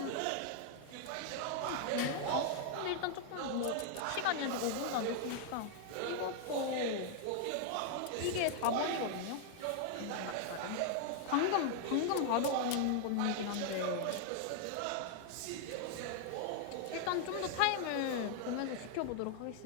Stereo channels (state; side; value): different; both; correlation 0.00